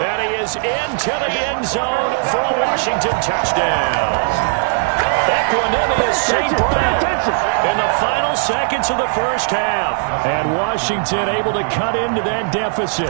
he is into the end zone for a Washington touchdown. Equanimous St. Brown in the final seconds of the first half. And Washington able to cut into that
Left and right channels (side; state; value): left; silent; digital silence